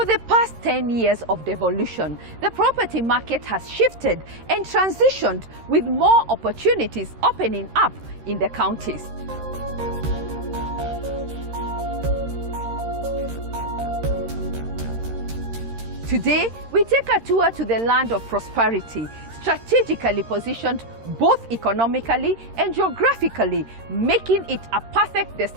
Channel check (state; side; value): late; left; 13 ms